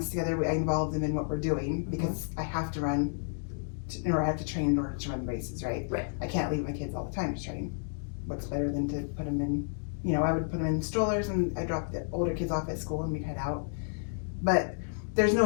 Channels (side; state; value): right; silent; digital silence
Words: together. I involve them in what we're doing because I have to run, or I have to train in order to run the races, right? Right. I can't leave my kids all the time to train. What's better than to put them in, I would put them in strollers and I drop the older kids off at school and we'd head out. But there's